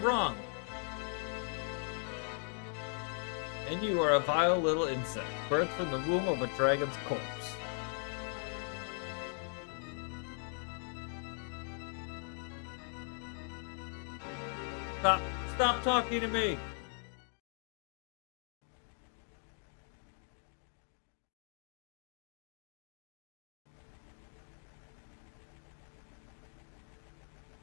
And you are a vile little insect, birthed from the womb of a dragon's corpse. Stop talking to me!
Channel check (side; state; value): right; silent; 52 dB below the other